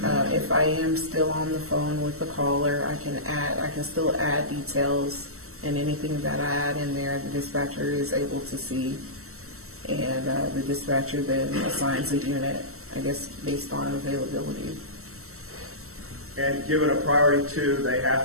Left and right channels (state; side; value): late; left; 0.63 ms